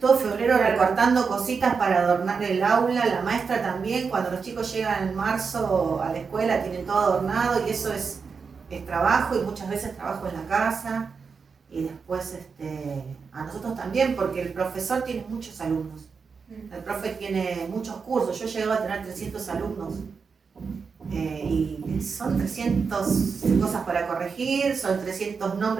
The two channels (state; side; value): quieter; left; 5.4 dB